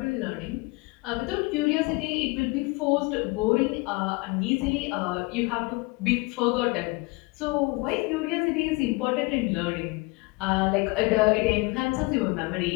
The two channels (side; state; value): right; quieter; 25.4 dB